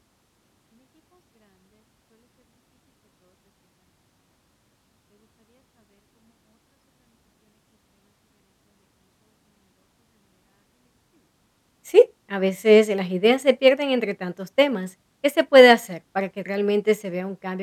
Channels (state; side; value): identical; both; correlation 1.00